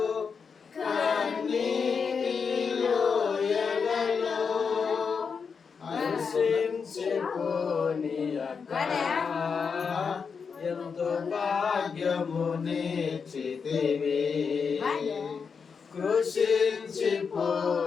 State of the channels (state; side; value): quieter; right; 5.8 dB